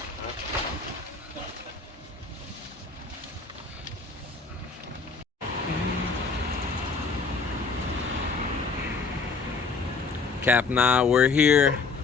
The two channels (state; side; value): quieter; right; 4.5 dB